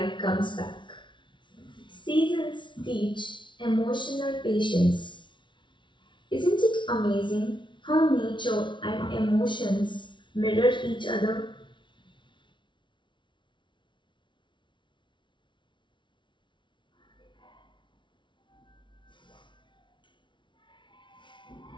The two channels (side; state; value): right; late; 0.24 ms